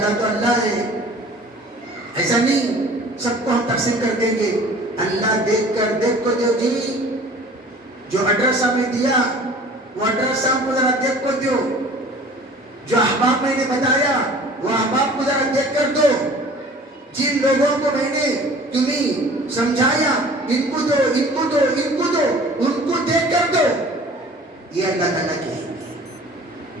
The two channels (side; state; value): both; normal; correlation 0.47